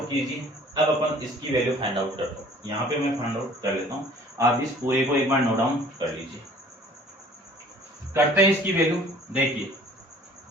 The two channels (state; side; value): normal; both; correlation 0.52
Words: कीजिए, अब अपन इसकी वैल्यू फाइंड आउट करते हैं। यहाँ पे मैं फाइंड आउट कर लेता हूँ, आप इस पूरे को एक बार नोट डाउन कर लीजिए। करते हैं इसकी वैल्यू, देखिए